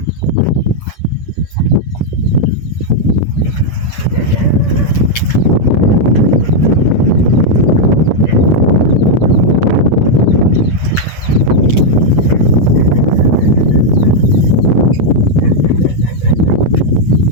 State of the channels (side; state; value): right; late; 8.2 ms